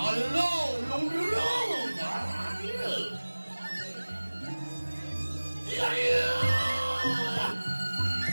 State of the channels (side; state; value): both; inverted; correlation -1.00